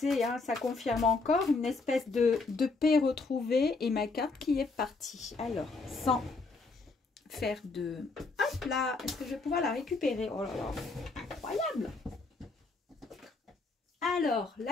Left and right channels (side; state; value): right; quieter; 3.8 dB